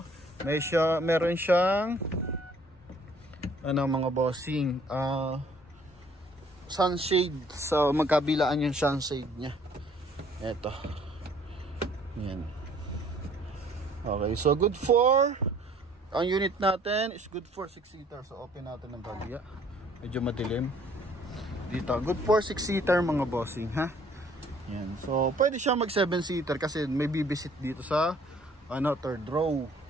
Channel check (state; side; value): normal; both; correlation 0.59